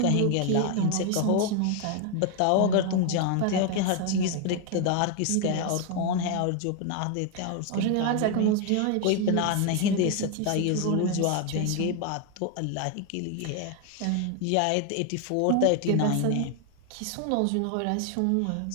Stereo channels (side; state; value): both; different; correlation 0.01